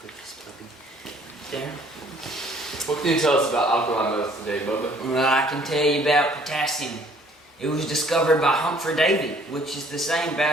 put this puppy there. What can you tell us about alkali metals today, Bubba? Well, I can tell you about potassium. It was discovered by Humphrey Davy, which is the same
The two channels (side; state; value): both; normal; correlation 0.58